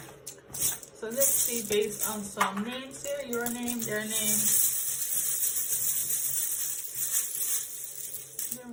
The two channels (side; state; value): both; identical; correlation 1.00